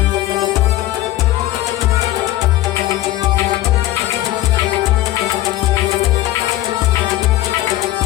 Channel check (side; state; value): right; quieter; 15.3 dB